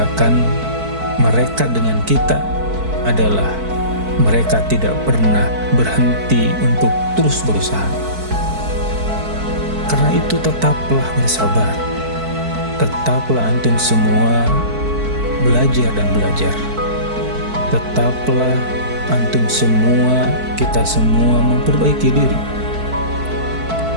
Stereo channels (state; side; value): late; left; 4.6 ms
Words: mereka dengan kita adalah mereka tidak pernah berhenti untuk terus berusaha. Karena itu tetaplah bersabar. Tetaplah antum semua belajar dan belajar. Tetaplah antum semua, kita semua memperbaiki diri.